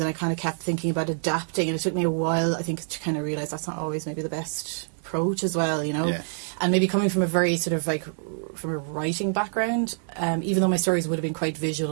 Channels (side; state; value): left; silent; digital silence